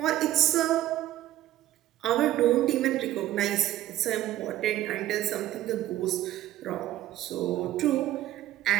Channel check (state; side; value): quieter; left; 13.8 dB